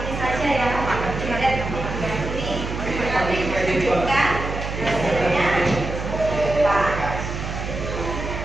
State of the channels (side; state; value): right; noise; hum, 5 dB below the sound